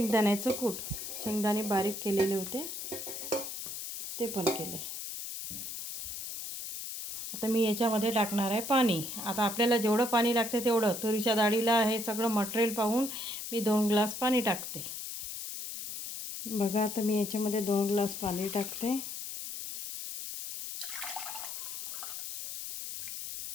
कूट, शेंगदाणे बारीक केलेले होते ते पण केले। आता मी याच्यामध्ये टाकणार आहे पाणी। आता आपल्याला जेवढं पाणी लागते तेवढं, तुरीच्या डाळीला हे सगळं मटेरियल पाहून मी 2 ग्लास पाणी टाकते। बघा आता मी याच्यामध्ये 2 ग्लास पाणी टाकते।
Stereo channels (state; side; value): noise; left; hiss, 7 dB below the sound